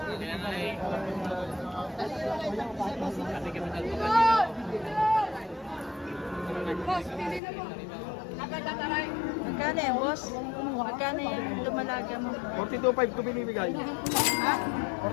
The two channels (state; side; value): drops out; right; at 7.4 s